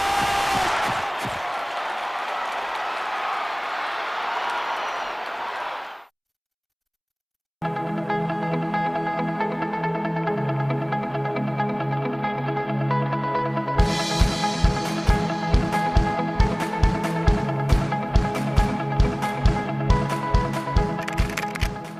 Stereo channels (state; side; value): identical; both; correlation 1.00